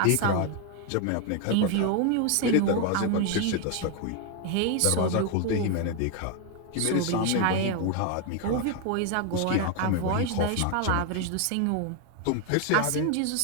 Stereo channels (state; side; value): different; both; correlation 0.01